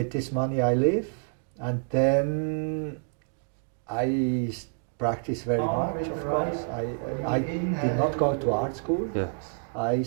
this money I live. And then I practice very much, of course. I did not go to art school. Yes. I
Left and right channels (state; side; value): silent; left; 59 dB below the other